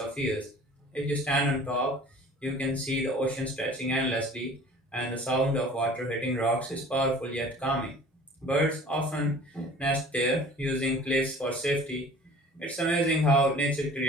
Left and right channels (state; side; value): normal; both; correlation 0.46